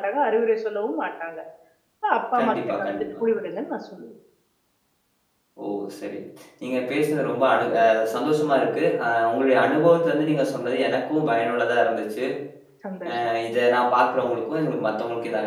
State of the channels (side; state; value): both; identical; correlation 1.00